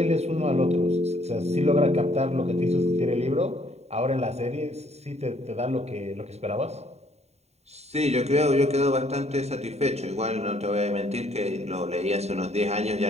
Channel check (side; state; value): left; late; 0.31 ms